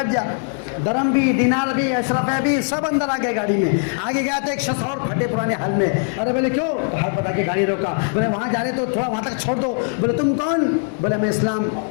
جا. درم بھی, دینار بھی, اشرفے بھی سب اندر آ گئے گاڑی میں. آگے گیا تو ایک شخص اور پھٹے پرانے حال میں. ارے بولے کیوں؟ ہاتھ بتا کے گاڑی روکا. بولے وہاں جا رہے تو تھوڑا وہاں تک چھوڑ دو. بولے تم کون؟ بولے میں اسلام,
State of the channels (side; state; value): right; silent; 57 dB below the other